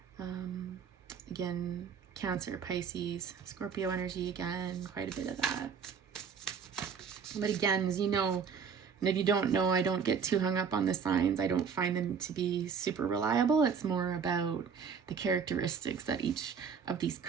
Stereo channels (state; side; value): quieter; left; 6.5 dB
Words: Again, Cancer, Pisces, Scorpio energy again, quite a bit of that. But again, as you know, and if you don't know, I don't get too hung up on the signs. I don't find them to be super reliable. It's more about the characteristics that each of these